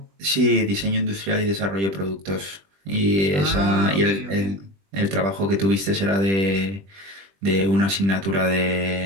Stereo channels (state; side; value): late; left; 20 ms